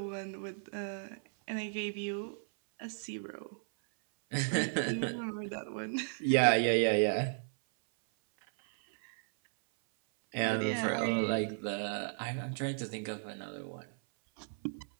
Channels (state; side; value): silent; left; 55 dB below the other